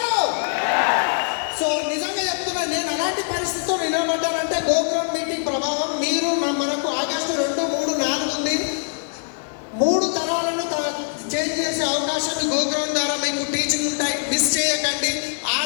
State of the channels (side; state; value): right; silent; digital silence